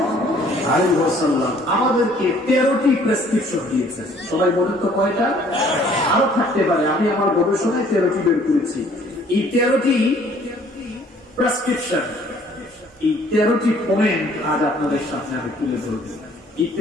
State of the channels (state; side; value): normal; both; correlation 0.58